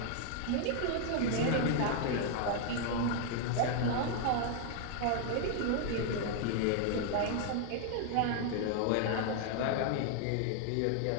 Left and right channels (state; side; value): different; both; correlation 0.00